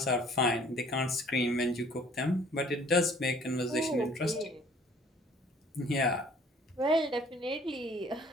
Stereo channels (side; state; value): both; normal; correlation 0.54